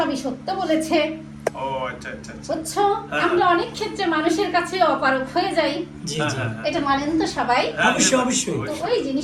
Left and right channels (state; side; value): identical; both; correlation 1.00